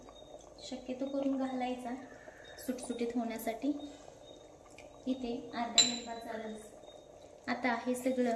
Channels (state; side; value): identical; both; correlation 1.00